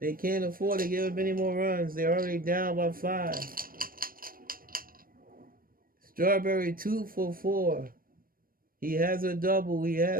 They can't afford to give up any more runs. They're already down by 5. Strawberry 2 for 4. He has a double. He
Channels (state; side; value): late; left; 0.41 ms